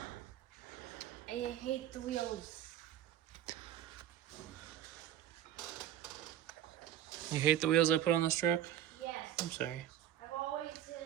I hate the wheels. You hate the wheels I put on this truck? Yes. I'm sorry. I've always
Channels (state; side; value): quieter; left; 11.2 dB